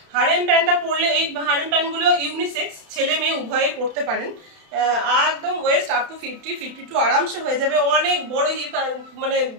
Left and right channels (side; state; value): left; late; 31 ms